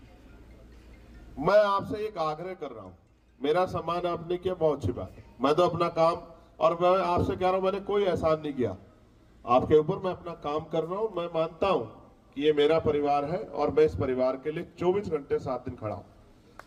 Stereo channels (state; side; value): identical; both; correlation 1.00